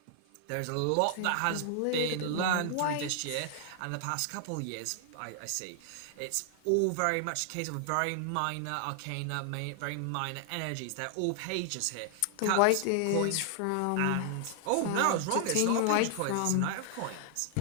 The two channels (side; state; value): both; different; correlation 0.00